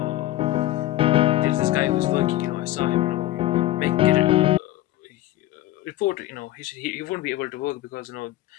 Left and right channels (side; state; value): right; quieter; 15.4 dB